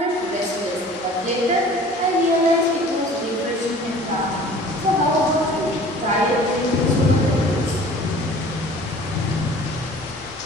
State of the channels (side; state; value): both; normal; correlation 0.46